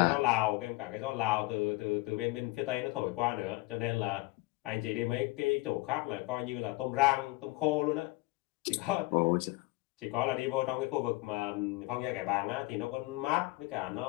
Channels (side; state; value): right; quieter; 21.5 dB